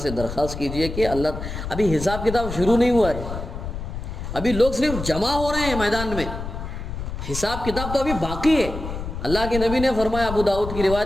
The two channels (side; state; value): left; noise; rumble, 7 dB below the sound